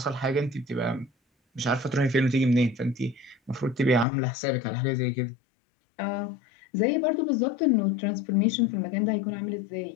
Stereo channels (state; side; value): drops out; right; at 4.0 s